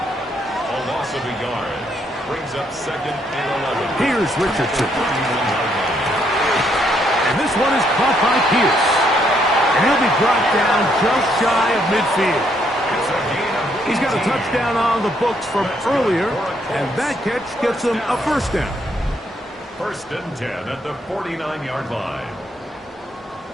loss of a yard brings up 2nd and 11. Here's Richardson. And this one is caught by Pierce. And he'll be brought down just shy of midfield. He's got a touchdown on the books from earlier, and that catch gets him a 1st down. 1st and 10 at the 49-yard line.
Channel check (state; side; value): normal; both; correlation 0.72